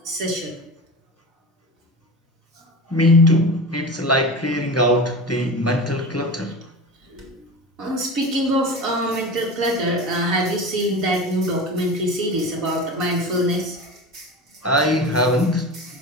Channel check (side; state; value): both; normal; correlation 0.30